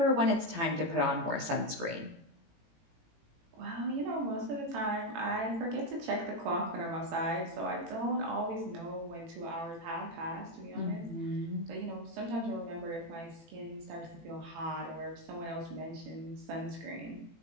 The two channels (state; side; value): late; left; 18 ms